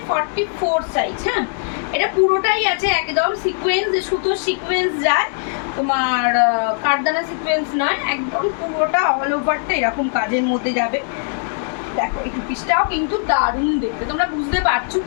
44 সাইজ। হ্যাঁ, এটা পুরোটাই আছে একদম সিকোয়েন্স, সুতোর সিকোয়েন্স যায়, তোমার কারদানা সিকোয়েন্স নয়, একদম পুরোটা অল ওভারটা এরকম কাজের মধ্যে যাবে। দেখো এই পিসটাও কিন্তু দারুণ দেখতে, তোমরা বুঝতে পারছো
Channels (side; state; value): right; silent; digital silence